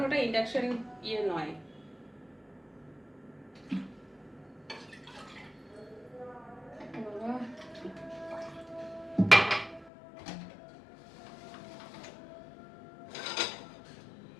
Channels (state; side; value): drops out; right; at 9.9 s